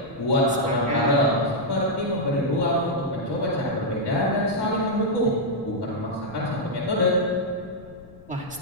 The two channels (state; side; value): noise; left; rumble, 22 dB below the sound